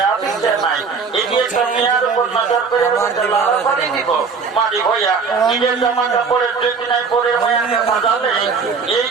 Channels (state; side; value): quieter; left; 5.3 dB